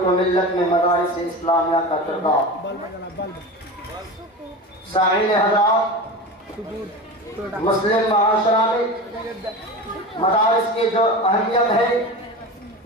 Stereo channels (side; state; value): both; normal; correlation 0.28